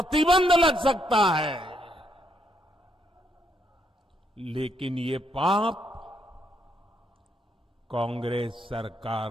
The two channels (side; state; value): both; normal; correlation 0.75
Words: लग सकता है। लेकिन ये पाप कांग्रेस